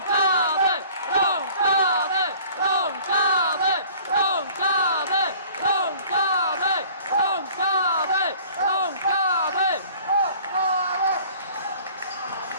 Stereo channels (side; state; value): both; inverted; correlation -0.50